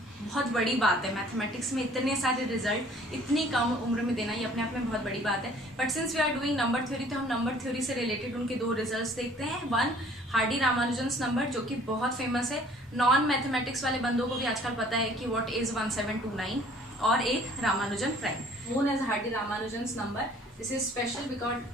बहुत बड़ी बात है मैथमेटिक्स में इतने सारे रिजल्ट इतनी कम उम्र में देना, ये अपने आप में बहुत बड़ी बात है. But since we are doing number theory तो हम नंबर थ्योरी से रिलेटेड उनके 2 रिजल्ट्स देखते हैं. वन हार्डी रामानुजन्स नंबर जो कि बहुत फेमस है, नॉन मैथमेटिक्स वाले बंदों को भी आजकल पता है कि व्हाट इज 1729, और एक Ramanujan prime known as Hardy Ramanujan's number. This is special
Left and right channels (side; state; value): both; normal; correlation 0.55